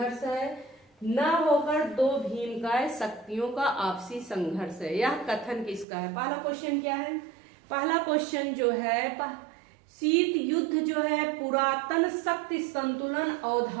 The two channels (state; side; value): drops out; left; at 5.9 s